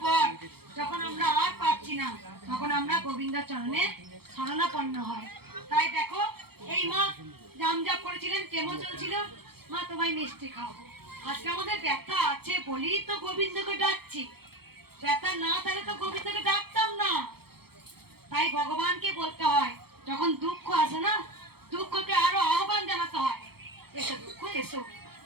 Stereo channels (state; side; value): late; left; 0.96 ms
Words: পর যখন আমরা আর পাচ্ছি না, তখন আমরা গোবিন্দ চরণে শরণাপন্ন হয়। তাই দেখো, এই মা জামজাপ করেছিলেন, কেমন চলছিল, মা তোমায় মিষ্টি খাওয়াবো। আজকে আমাদের ব্যথা আছে বলেই তো গোবিন্দকে ডাকছি। ব্যথা না থাকলে তো গোবিন্দকে ডাকতাম না। তাই ভগবানকে বলতে হয়, যখন দুঃখ আসে না, দুঃখকে আরো আহ্বান জানাতে হয়, এসো দুঃখ এসো,